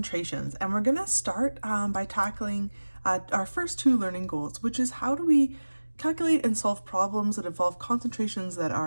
and we're going to start by tackling our first two learning goals, which is how do we calculate and solve problems that involve concentrations that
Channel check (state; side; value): inverted; both; correlation -1.00